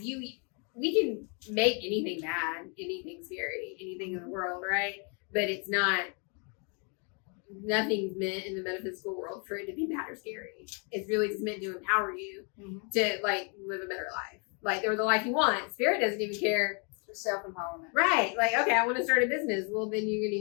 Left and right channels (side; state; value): right; quieter; 36.9 dB